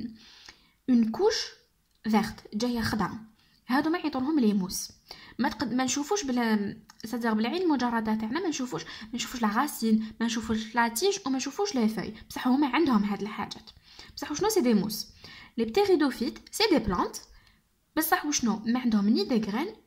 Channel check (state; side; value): identical; both; correlation 1.00